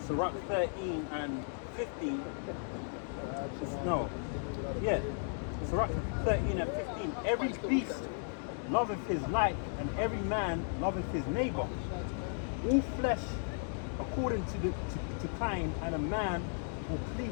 Sirach 13 and 15. No. Yeah. Sirach 13 and 15. Every beast loveth his like, and every man loveth his neighbor. All flesh according to kind, and a man will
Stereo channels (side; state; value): right; silent; 54 dB below the other